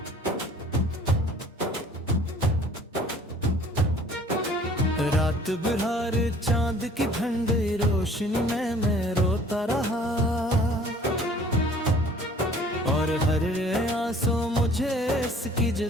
रात बिहार चांद की ठंडी रोशनी में मैं रोता रहा, और हर आंसू मुझे इसकी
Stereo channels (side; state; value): both; normal; correlation 0.52